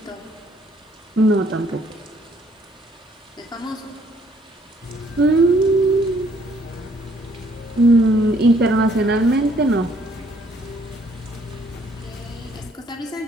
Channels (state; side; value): normal; both; correlation 0.64